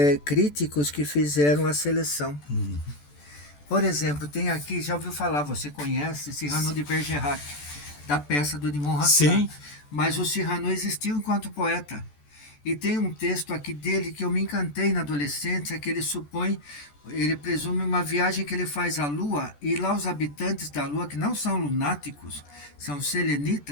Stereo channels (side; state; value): right; late; 14 ms